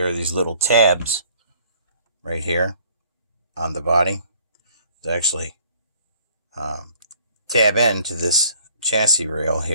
are these little tabs right here on the body that actually tab into this chassis rail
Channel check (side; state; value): both; inverted; correlation -0.58